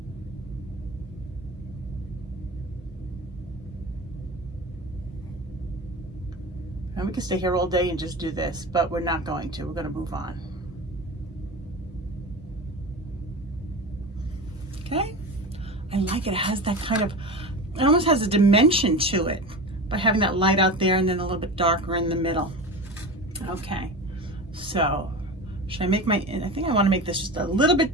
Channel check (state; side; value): normal; both; correlation 0.29